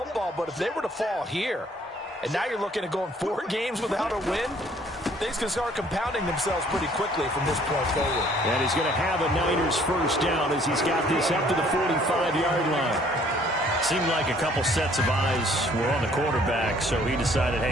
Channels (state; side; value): normal; both; correlation 0.60